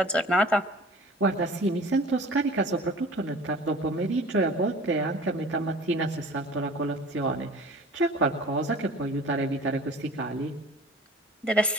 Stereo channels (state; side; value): normal; both; correlation 0.43